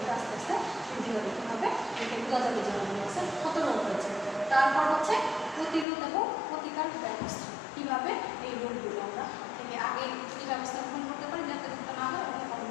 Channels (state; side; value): drops out; right; at 5.9 s